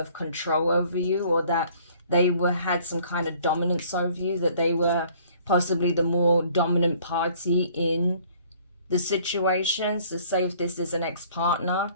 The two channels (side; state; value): both; inverted; correlation -0.57